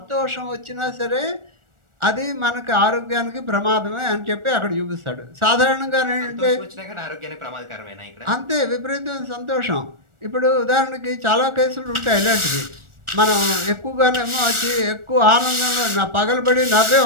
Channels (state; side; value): late; left; 1.4 ms